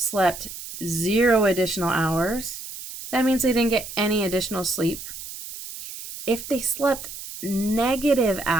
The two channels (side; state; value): right; noise; hiss, 11 dB below the sound